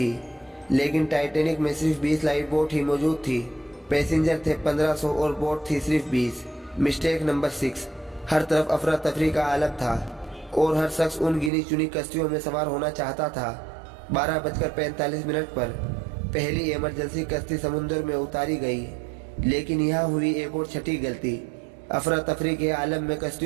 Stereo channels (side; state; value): left; drops out; at 11.5 s